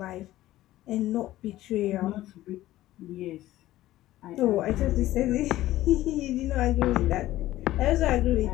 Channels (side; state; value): right; quieter; 15.3 dB